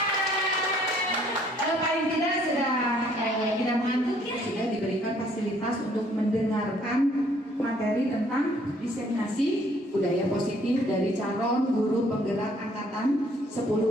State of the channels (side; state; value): both; normal; correlation 0.63